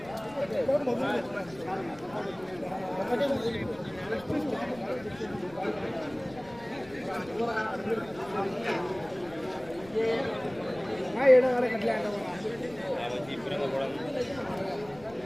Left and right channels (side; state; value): left; noise; rumble, 21 dB below the sound